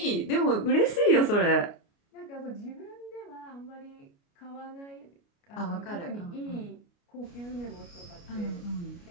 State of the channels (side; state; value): right; late; 29 ms